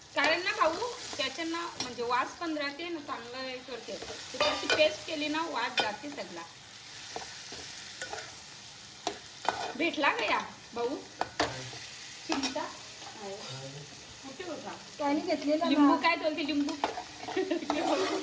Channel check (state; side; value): identical; both; correlation 1.00